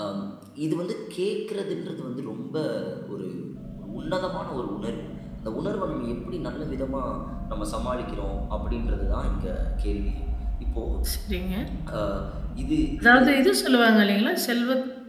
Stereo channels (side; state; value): both; identical; correlation 1.00